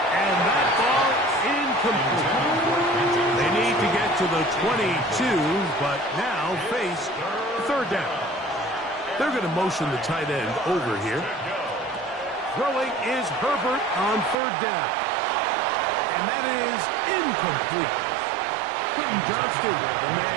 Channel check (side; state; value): left; drops out; at 14.4 s